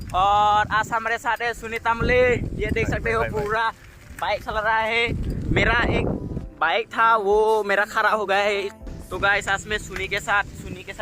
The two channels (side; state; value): both; identical; correlation 1.00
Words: और आज हमारे साथ है सुनीता मुले। ये देख सकते हो पूरा बाइक चला रहा है। मेरा एक बाइक था वो मेरा खराब हो गया है। तो गाइस आज मैं सुनी के